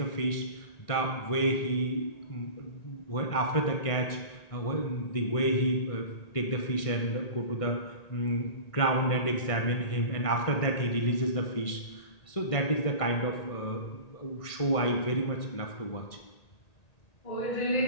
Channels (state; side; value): late; right; 1.6 ms